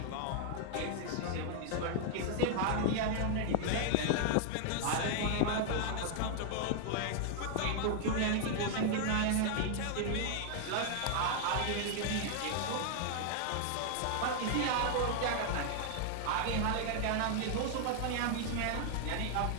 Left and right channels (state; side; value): different; both; correlation 0.00